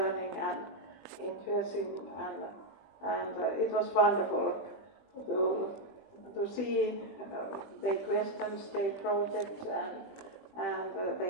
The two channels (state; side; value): late; right; 20 ms